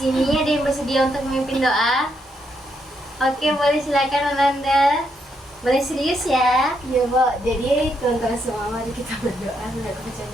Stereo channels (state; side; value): normal; both; correlation 0.78